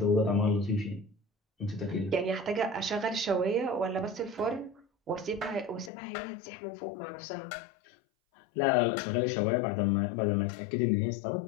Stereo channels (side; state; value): right; drops out; at 5.9 s